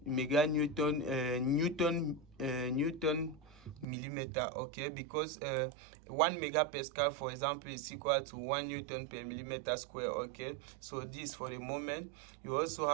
meganewton newton millimeter. Okay, because 1 megapascal, for example, is equal to 1 newton per millimeter square. Okay, so this for the moment. You also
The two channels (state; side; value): drops out; left; at 3.9 s